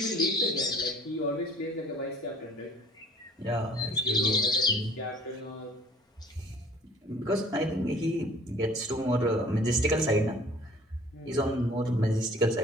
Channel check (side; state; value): both; normal; correlation 0.52